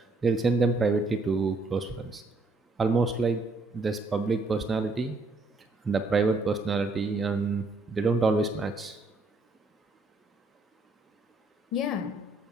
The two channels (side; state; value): left; quieter; 3.1 dB